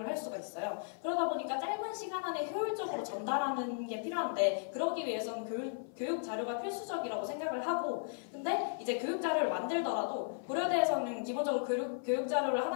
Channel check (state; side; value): silent; right; 54 dB below the other